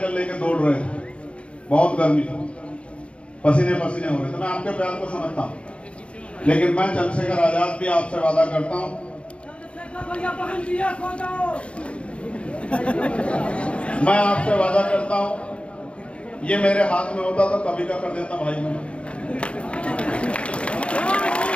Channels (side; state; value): right; late; 0.060 ms